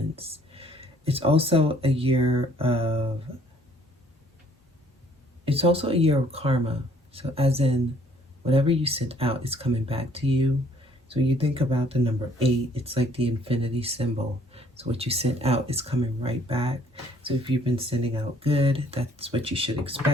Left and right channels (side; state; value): both; normal; correlation 0.62